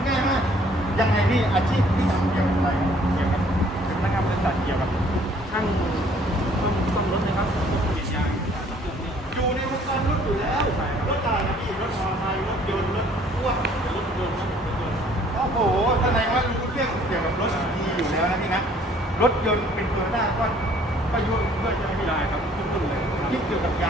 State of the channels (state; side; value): normal; both; correlation 0.58